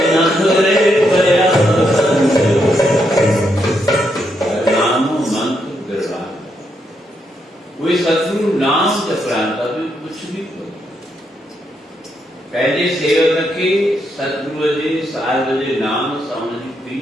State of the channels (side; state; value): both; normal; correlation 0.79